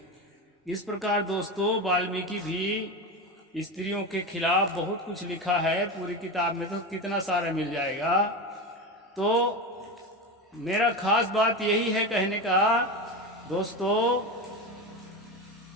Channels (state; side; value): normal; both; correlation 0.21